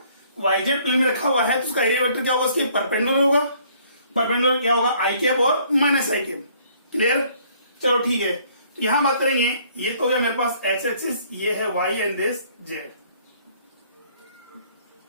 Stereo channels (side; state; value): both; inverted; correlation -0.61